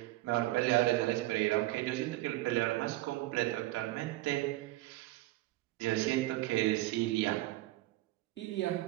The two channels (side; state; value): left; quieter; 18.0 dB